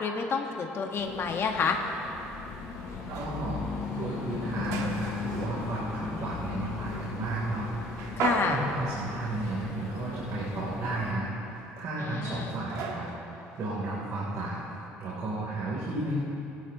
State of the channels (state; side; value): normal; both; correlation 0.55